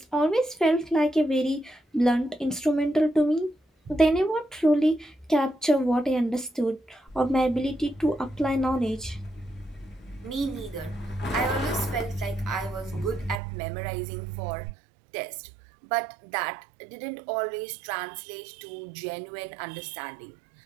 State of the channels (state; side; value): drops out; left; at 13.4 s